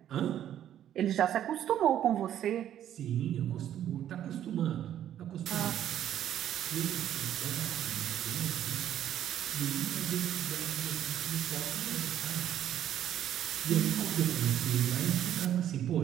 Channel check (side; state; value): left; quieter; 10.9 dB